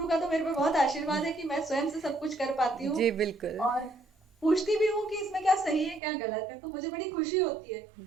का तो मेरे पे बहुत आशीर्वाद है कि मैं स्वयं से सब कुछ कर पाती हूँ। जी बिल्कुल। और पूछती भी हूँ कि इसमें क्या सही है क्या गलत है, तो मुझे बड़ी खुशी होती है।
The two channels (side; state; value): left; drops out; at 6.0 s